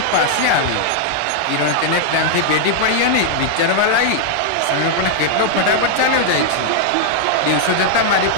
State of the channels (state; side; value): different; both; correlation -0.01